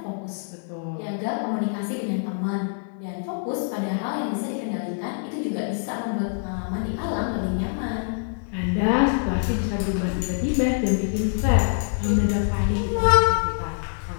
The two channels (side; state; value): right; silent; digital silence